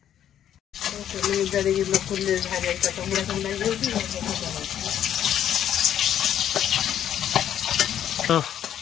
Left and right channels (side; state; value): right; quieter; 10.3 dB